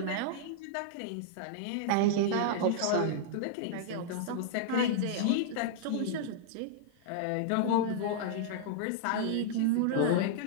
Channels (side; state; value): both; different; correlation -0.01